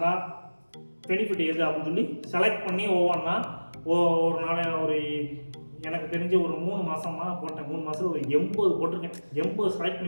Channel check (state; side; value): inverted; both; correlation -1.00